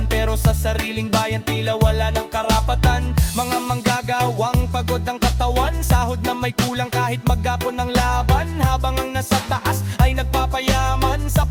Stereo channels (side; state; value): both; identical; correlation 1.00